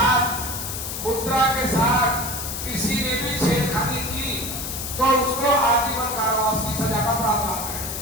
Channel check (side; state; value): left; noise; hiss, 6 dB below the sound